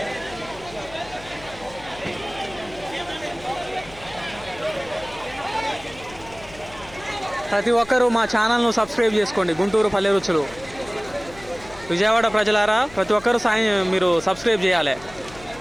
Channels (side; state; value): left; noise; hum, 19 dB below the sound